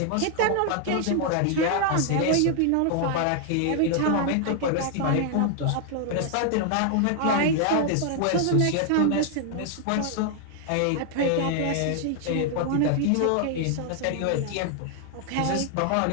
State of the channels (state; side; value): different; both; correlation 0.00